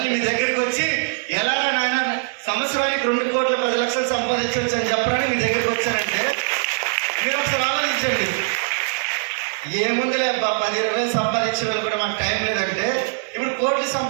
మీ దగ్గరికి వచ్చి ఎలా నాయన సంవత్సరానికి 2,10,00,000 సంపాదించవచ్చు అని చెప్పడానికి మీ దగ్గరికి వచ్చానంటే మీరు ఒకసారి ఆలోచించండి. ఏముందిలే 10,000 సంపాదించే వాళ్ళు కూడా మాకు టైం లేదంటే ఇప్పుడు కోట్లు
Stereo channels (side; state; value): left; silent; digital silence